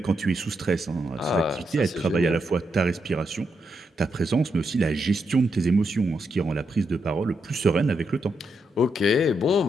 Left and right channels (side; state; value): both; normal; correlation 0.82